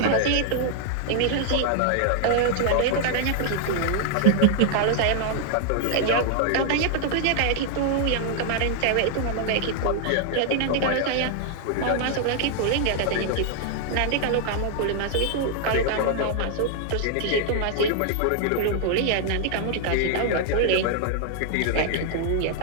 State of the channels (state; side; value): different; both; correlation 0.00